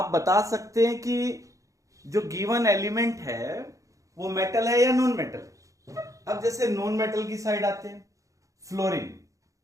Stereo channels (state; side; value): late; left; 0.16 ms